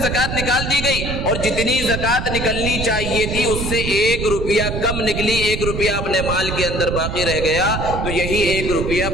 زکوٰۃ نکال دی گئی اور جتنی زکوٰۃ نکلنی چاہیے تھی اس سے 1 روپیہ کم نکلی، 1 روپیہ اپنے مال کے اندر باقی رہ گیا، تو یہی 1 روپیہ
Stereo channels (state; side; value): noise; right; rumble, 4 dB below the sound